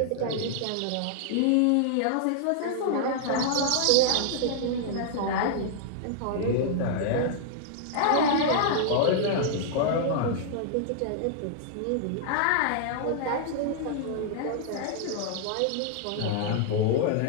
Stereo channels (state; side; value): different; both; correlation -0.01